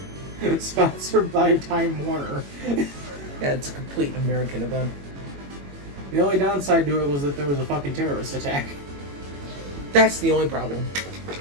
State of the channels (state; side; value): late; left; 21 ms